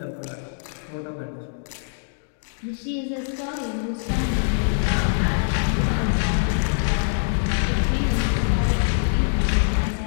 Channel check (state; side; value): silent; right; digital silence